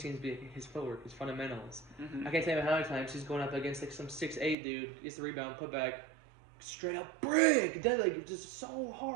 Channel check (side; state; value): left; drops out; at 4.5 s